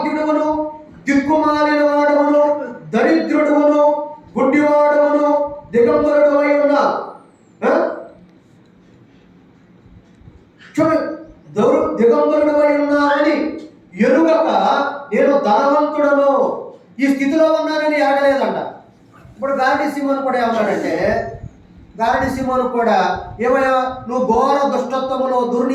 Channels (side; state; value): both; identical; correlation 1.00